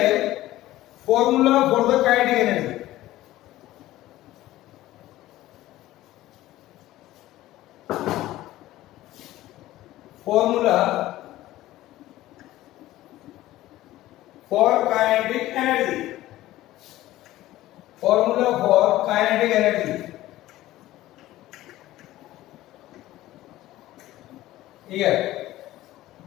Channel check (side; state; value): right; quieter; 15.7 dB